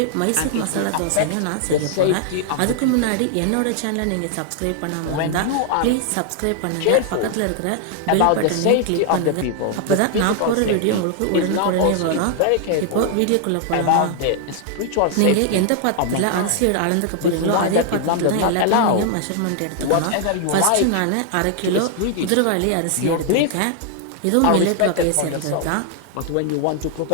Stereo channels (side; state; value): both; different; correlation 0.00